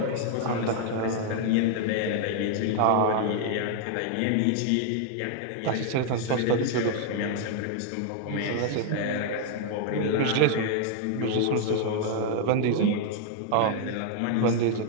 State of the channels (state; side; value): different; both; correlation 0.00